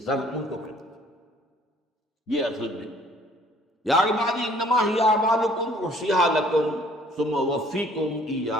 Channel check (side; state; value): both; normal; correlation 0.57